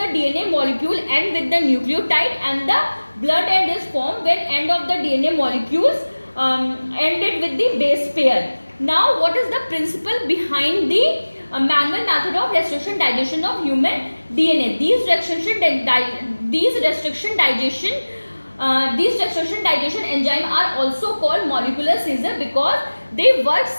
DNA molecule end with the nucleotide, and the blunt end is formed when end of the DNA molecules ended with the base pair. Now, what is the principle behind the manual method of restriction digestion of human DNA? These restriction digestion enzyme are also called molecular scissor because they work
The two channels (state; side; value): inverted; both; correlation -1.00